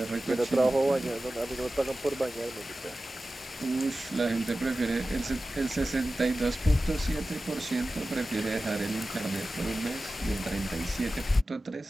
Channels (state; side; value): normal; both; correlation 0.95